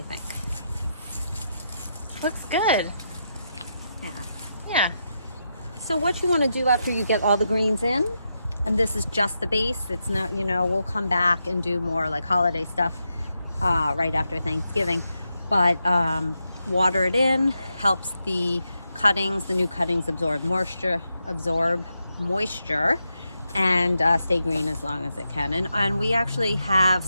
think? Looks good. Yeah. Yeah. So what you want to do after you get all the greens in, and this is just the base, it's not, we'll come back and do more like holiday stuff right after Thanksgiving, but water it in, helps the cuttings, the new cuttings absorb moisture, and stay green as long as it can. And we actually have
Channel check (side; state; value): both; inverted; correlation -0.85